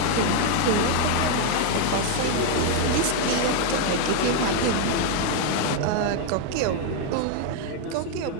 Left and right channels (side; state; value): both; different; correlation 0.01